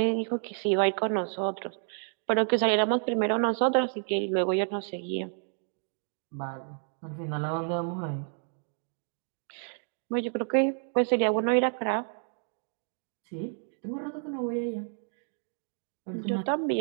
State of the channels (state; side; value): silent; left; 58 dB below the other